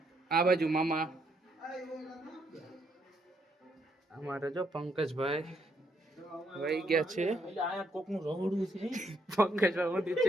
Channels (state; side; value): normal; both; correlation 0.74